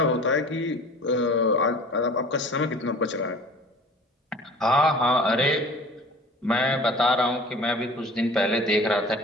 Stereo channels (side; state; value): both; normal; correlation 0.43